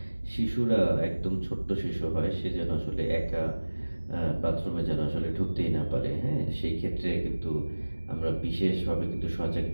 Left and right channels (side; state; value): both; inverted; correlation -1.00